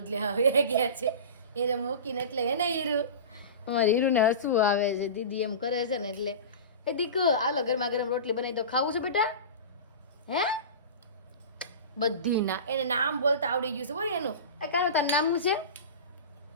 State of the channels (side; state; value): both; inverted; correlation -0.31